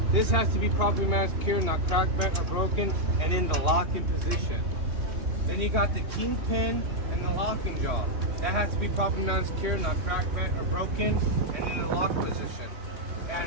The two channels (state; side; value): late; left; 3.2 ms